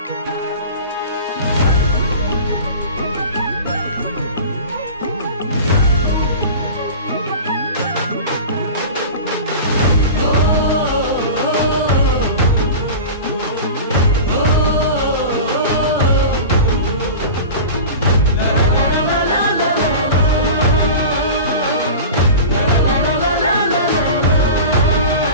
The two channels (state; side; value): inverted; both; correlation -0.33